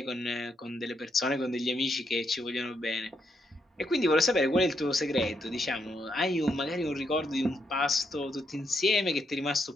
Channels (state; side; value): normal; both; correlation 0.78